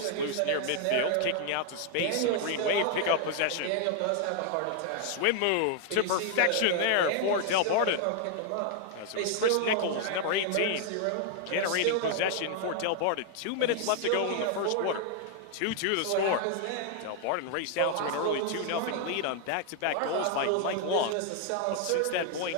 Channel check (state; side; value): different; both; correlation 0.00